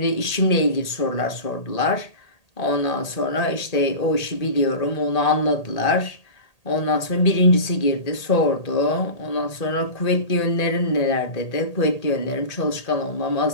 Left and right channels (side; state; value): right; late; 1.8 ms